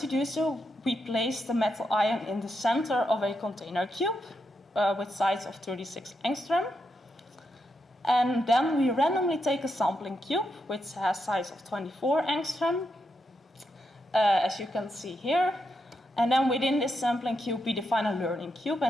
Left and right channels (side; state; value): both; normal; correlation 0.84